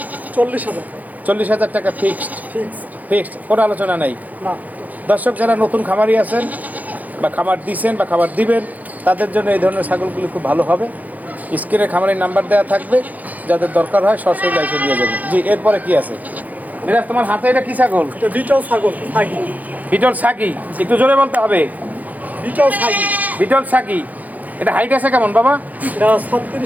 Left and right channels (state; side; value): late; left; 0.080 ms